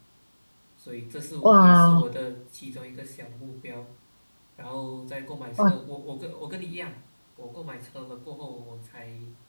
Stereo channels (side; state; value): both; inverted; correlation -1.00